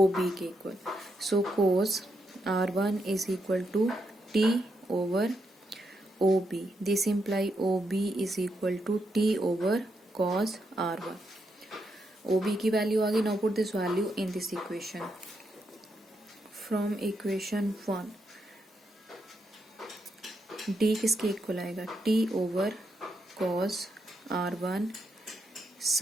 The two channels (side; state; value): both; normal; correlation 0.81